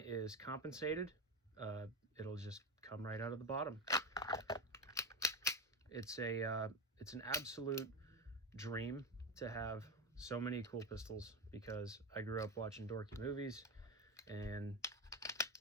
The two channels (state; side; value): normal; both; correlation 0.17